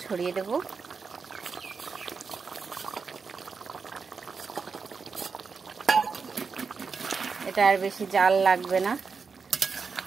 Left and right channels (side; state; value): left; quieter; 5.2 dB